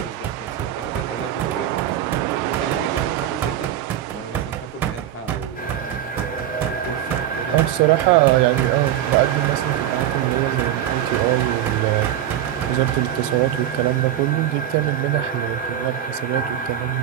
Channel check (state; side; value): quieter; left; 11.2 dB